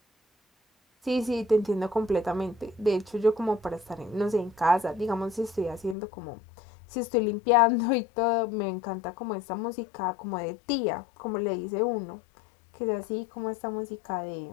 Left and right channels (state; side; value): drops out; right; at 6.0 s